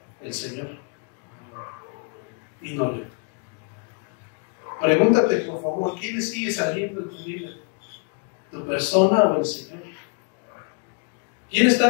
El Señor, y no yo. Pregúntate, por favor, ¿quién sigue saliendo en tu vida? ¿Tu persona o el Señor? ¿Quién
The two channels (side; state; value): right; quieter; 39.7 dB